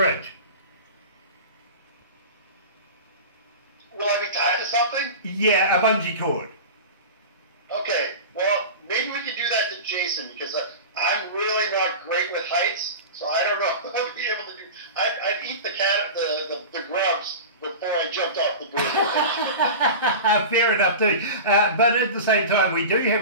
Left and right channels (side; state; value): both; inverted; correlation -0.30